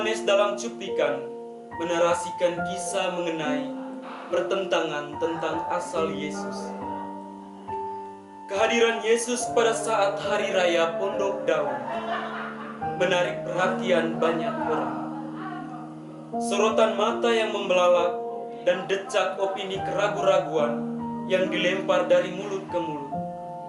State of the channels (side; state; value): both; identical; correlation 1.00